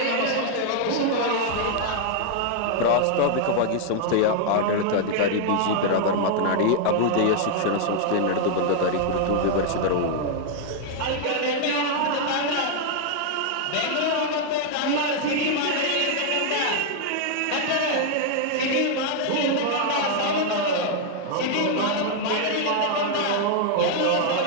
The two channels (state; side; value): different; both; correlation 0.00